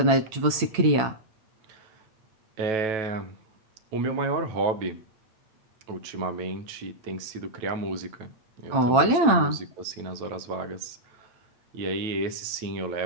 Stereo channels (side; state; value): left; late; 8.8 ms